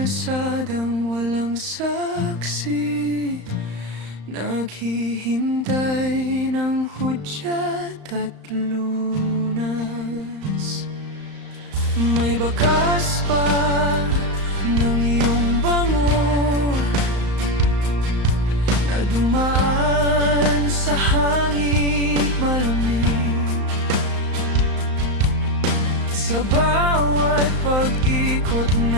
walang saksi, naghihintay ng hudyat at lunas. May bakas pa ng iyong bango na dumaan sa hangin malamig. Sa bawat pag-ikot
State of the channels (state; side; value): late; left; 35 ms